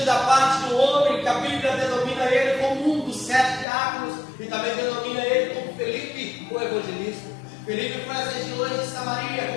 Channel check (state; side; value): drops out; right; at 3.7 s